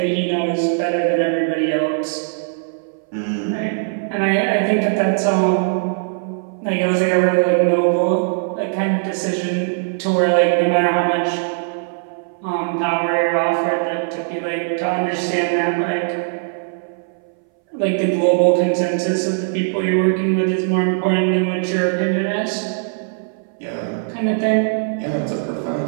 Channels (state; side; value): silent; left; 62 dB below the other